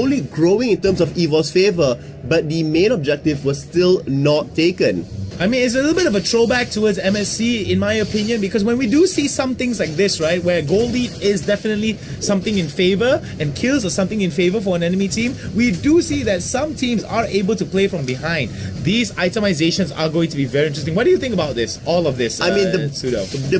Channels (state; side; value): identical; both; correlation 1.00